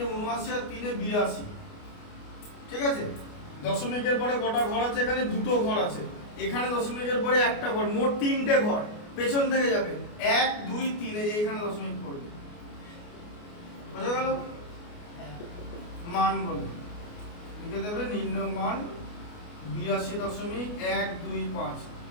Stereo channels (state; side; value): late; right; 29 ms